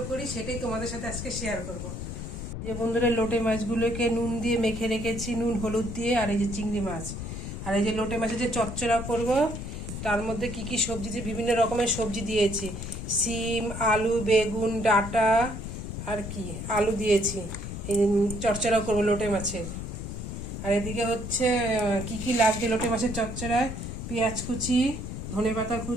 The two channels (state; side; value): noise; left; rumble, 7 dB below the sound